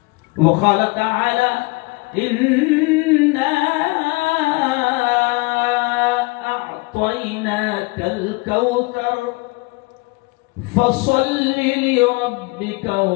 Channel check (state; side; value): quieter; right; 25.6 dB